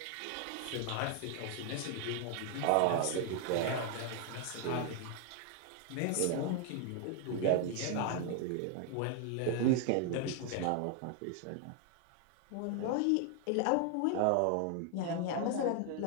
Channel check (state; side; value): different; both; correlation 0.00